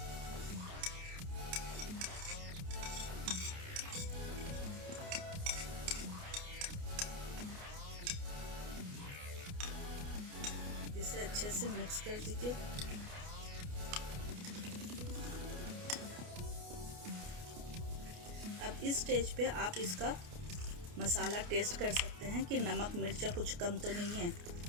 इसे अच्छे से मिक्स कर दीजिए। अब इस स्टेज पे आप इसका मसाला टेस्ट कर सकते हैं कि नमक मिर्चा कुछ कम तो नहीं है।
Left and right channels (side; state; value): left; late; 29 ms